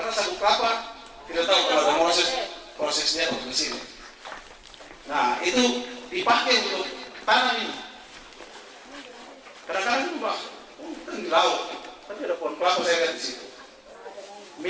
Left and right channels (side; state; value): both; identical; correlation 1.00